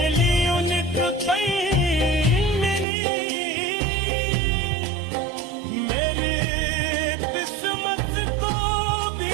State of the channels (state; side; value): drops out; left; at 2.9 s